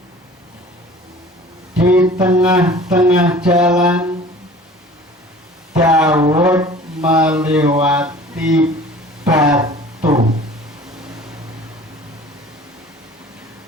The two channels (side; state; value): both; normal; correlation 0.45